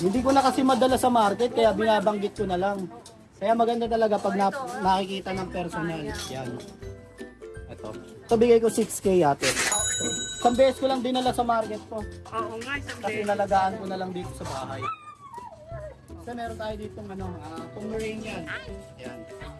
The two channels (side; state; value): both; identical; correlation 1.00